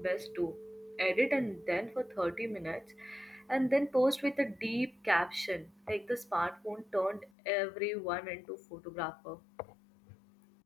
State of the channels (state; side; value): drops out; right; at 7.3 s